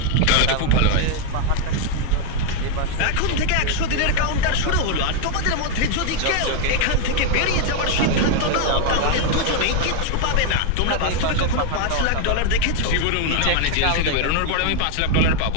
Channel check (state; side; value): different; both; correlation 0.01